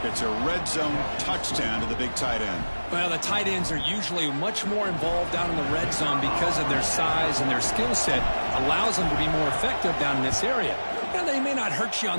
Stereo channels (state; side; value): inverted; both; correlation -1.00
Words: It's a red zone touchdown to the big tight end. Well, the tight ends are usually much more involved down in the red zone because of their size and their skill set allows them to be more effective down in this area. Now, they may not hurt you